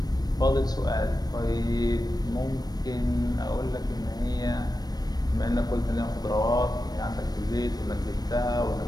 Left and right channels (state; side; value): late; right; 0.19 ms